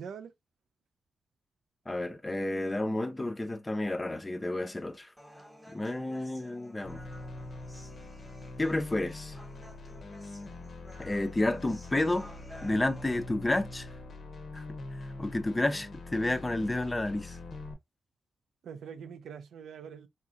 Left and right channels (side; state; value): both; normal; correlation 0.97